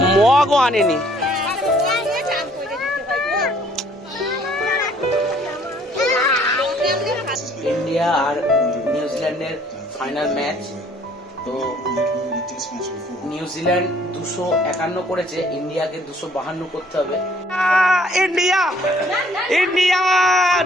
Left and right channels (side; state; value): both; normal; correlation 0.60